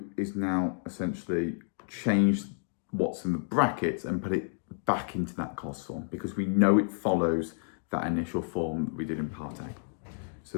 is now essentially change what's in the brackets and put it back into that cos form because we know it follows that initial form that we did in part A. So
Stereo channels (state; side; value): silent; right; digital silence